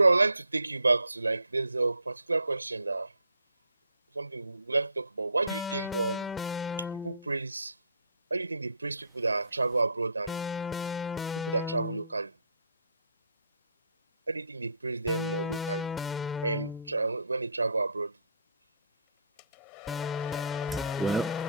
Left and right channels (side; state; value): both; inverted; correlation -0.61